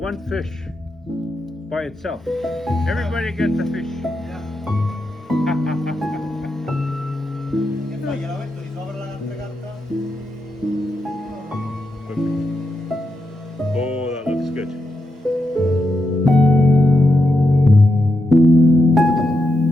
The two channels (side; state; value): both; normal; correlation 0.85